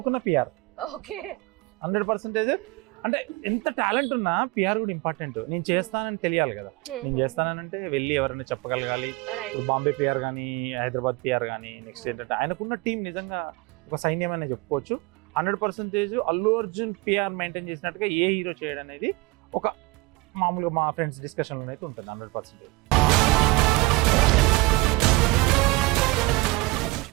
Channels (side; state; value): left; quieter; 23.2 dB